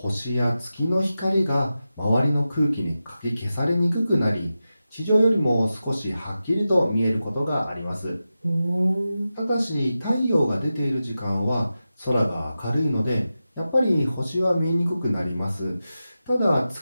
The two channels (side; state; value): both; inverted; correlation -0.92